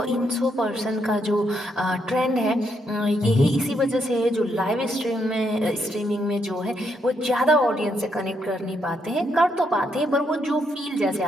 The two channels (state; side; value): normal; both; correlation 0.77